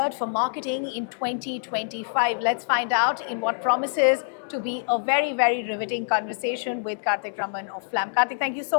for marketing in 2025? Let's find out in what promises to be a very, very riveting conversation with Karthik Raman of FLAM. Karthik, thank you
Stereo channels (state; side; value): silent; right; digital silence